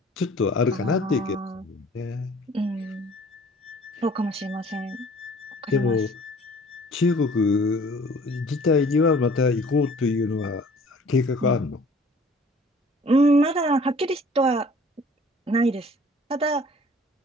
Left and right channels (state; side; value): normal; both; correlation 0.52